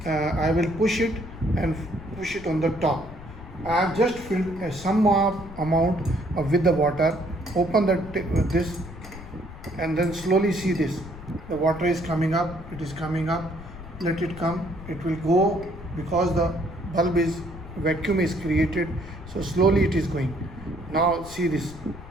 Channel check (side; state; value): left; noise; rumble, 15 dB below the sound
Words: I will push it on the top. I have just filled some amount with the water. Open this, and then slowly see this. The water is coming up. It is coming up. Let it come. It will go because the bulb vacuum is created. So slowly it is going. Now see this.